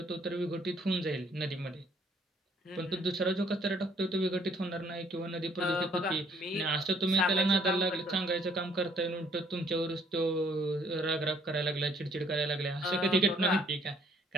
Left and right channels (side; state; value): both; normal; correlation 0.63